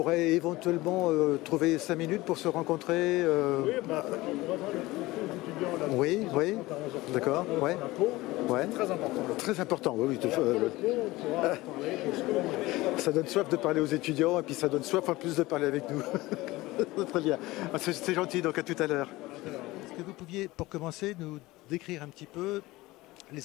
éventuellement trouver 5 minutes pour se rencontrer. Oui, bah, on va voir les étudiants là. Oui, oui, d'accord, ouais. Ouais. Très important. Très important, oui. On pourra parler de ce que l'on veut. Ça donne soif de parler aux étudiants et puis ça donne soif en plus de parler avec nous. Très bien. C'est gentil, donc à tout à l'heure. Est-ce que vous pouviez, pour commencer, nous décrire un petit peu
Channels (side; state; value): right; quieter; 19.5 dB